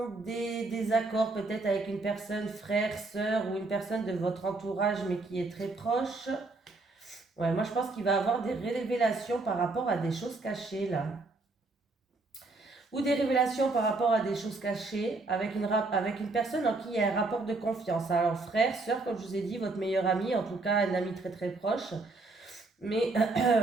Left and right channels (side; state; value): left; quieter; 3.4 dB